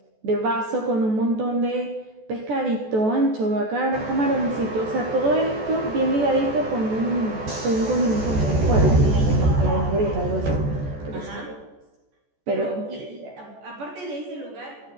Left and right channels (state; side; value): late; left; 14 ms